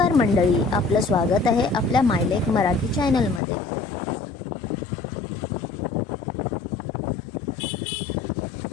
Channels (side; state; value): right; drops out; at 3.4 s